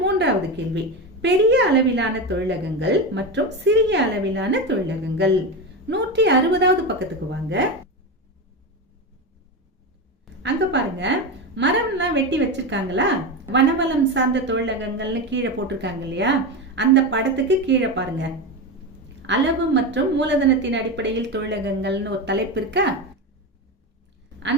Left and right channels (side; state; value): both; normal; correlation 0.18